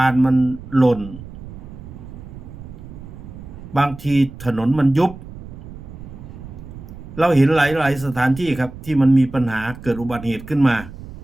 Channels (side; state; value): right; noise; rumble, 14 dB below the sound